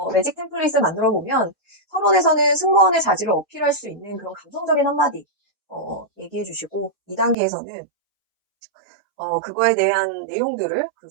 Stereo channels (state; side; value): drops out; left; at 7.4 s